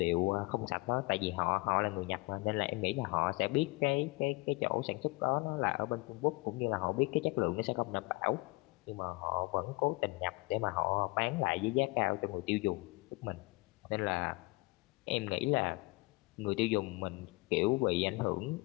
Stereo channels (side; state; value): right; quieter; 24.8 dB